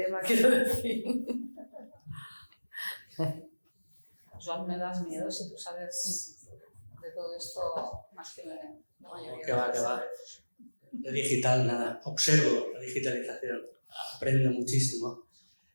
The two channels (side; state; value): both; inverted; correlation -1.00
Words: quiero decir. Joan, me das miedo si tú sabes de todo esto más que la mayoría. Que va. De digital, nada. Observo la digitalización, aprendo muchísimo.